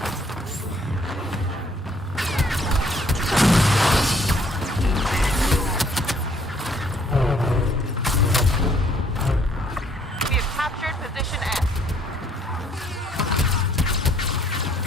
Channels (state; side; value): normal; both; correlation 0.63